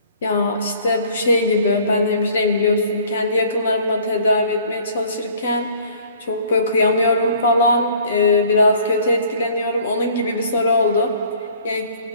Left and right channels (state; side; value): inverted; both; correlation -0.54